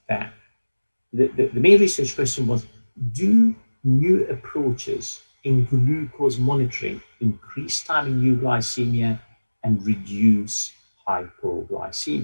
that the main research question was, do new approaches in glucose monitoring increase time in euglycemia and reduce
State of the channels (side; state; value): both; inverted; correlation -1.00